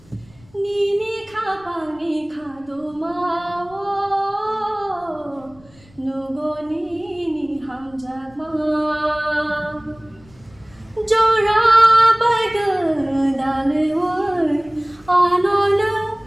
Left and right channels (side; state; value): left; noise; rumble, 27 dB below the sound